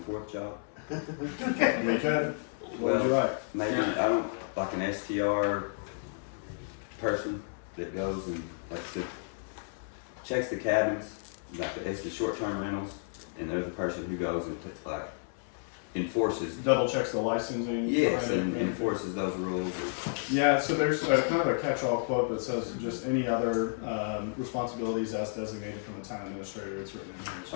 job? We could. What would you like? Maybe, I don't, like an STR person that goes and checks the cabins, like it's the short-term rentals, and there's a person who goes and like enforces. Double checks the licensing. Yes, behind and it. enforces those rules. Yeah, so there's kind of a catch-all quote that says just any other responsibilities as designated from the town administrator. It's written in here.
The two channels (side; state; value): right; silent; 57 dB below the other